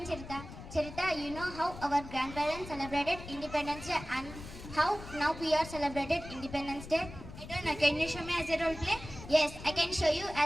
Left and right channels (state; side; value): noise; left; rumble, 13 dB below the sound